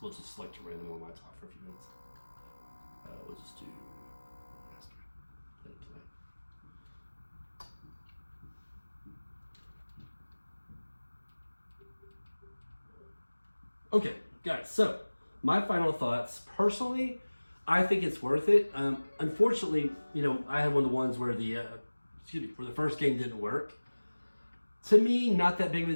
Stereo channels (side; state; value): both; inverted; correlation -1.00